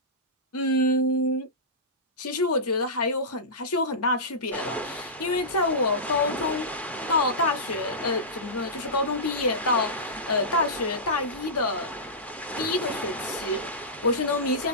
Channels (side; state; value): both; normal; correlation -0.16